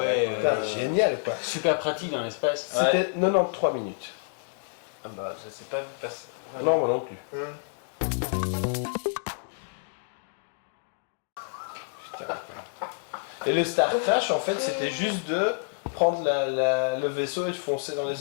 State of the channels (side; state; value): right; silent; digital silence